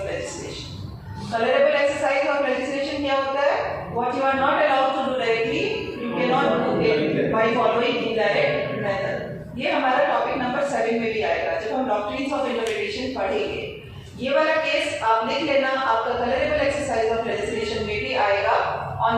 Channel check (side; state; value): both; identical; correlation 1.00